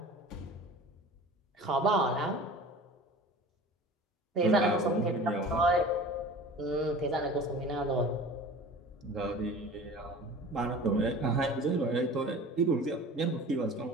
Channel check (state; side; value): normal; both; correlation 0.41